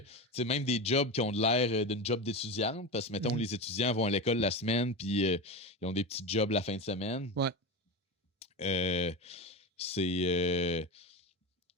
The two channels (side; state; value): both; normal; correlation 0.21